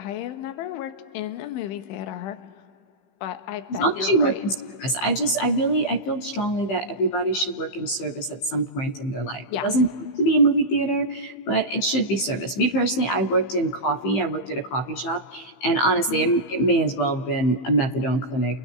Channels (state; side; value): late; right; 15 ms